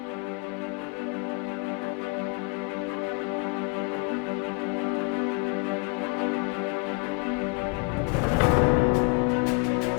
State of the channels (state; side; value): quieter; right; 30.9 dB